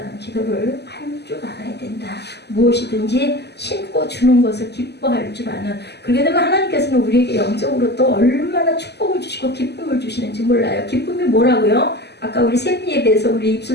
기도를 할 줄 알아야 된다. 무엇이든지 심고 주는 것을 기뻐할 줄 아는. 그렇게 되면 하나님께서는 우리에게 영적으로 또 얼마나 축복을 주시고 기쁨을 주시는지 몰라요. 기쁨이 뭐라고요? 아까 우리 샘 예배에서 우리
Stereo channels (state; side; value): late; right; 0.49 ms